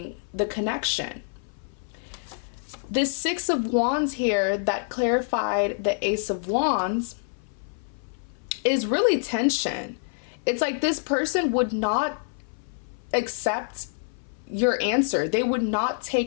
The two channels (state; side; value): silent; right; 58 dB below the other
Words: the connection. This Six of Wands here that clarified the Ace of Wands is really tension. It's like this person would not accept your answer. They would not